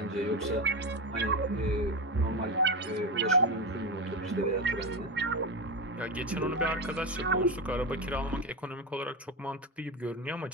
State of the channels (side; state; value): both; normal; correlation 0.16